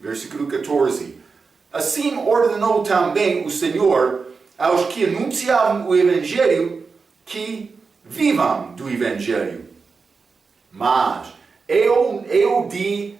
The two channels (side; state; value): left; quieter; 4.8 dB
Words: versículo 14. Assim ordenou também o Senhor aos que anunciavam o Evangelho que vivam do Evangelho. Mas eu de